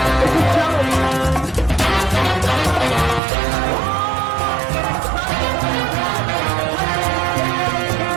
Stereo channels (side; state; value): left; drops out; at 3.2 s